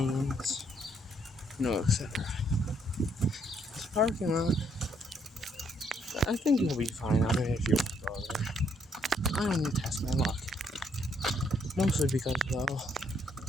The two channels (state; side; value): normal; both; correlation 0.70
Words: etc. This parking lot, I think you'll be fine on it if you want to go there. I don't need to test my luck. Mostly because, well,